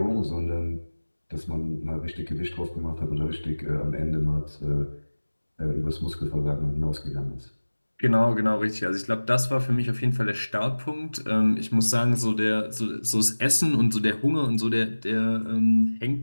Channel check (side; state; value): both; inverted; correlation -1.00